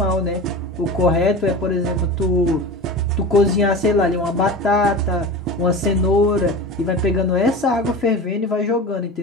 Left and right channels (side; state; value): both; normal; correlation 0.30